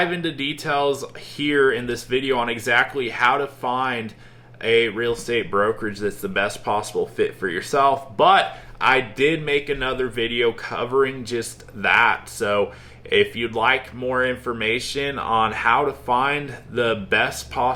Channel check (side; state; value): both; identical; correlation 1.00